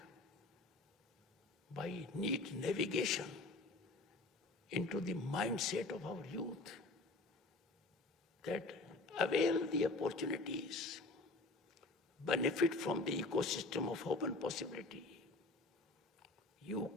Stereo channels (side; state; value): right; quieter; 3.1 dB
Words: by neat navigation, into the mindset of our youth that avail the opportunities, benefit from the ecosystem of hope and possibility. You